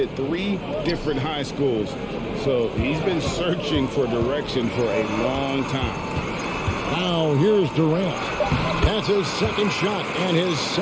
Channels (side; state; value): both; identical; correlation 1.00